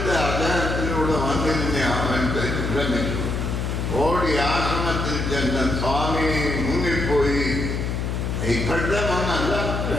അദ്ദേഹത്തിലൂടെ വന്നിരുന്ന അവൻ ഭ്രമിച്ചു. ഓടി ആശ്രമത്തിൽ ചെന്ന് സ്വാമി മുങ്ങിപ്പോയി. ഇപ്പോഴത്തെ മണ്ണല്ല,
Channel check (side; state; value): left; noise; hum, 1 dB below the sound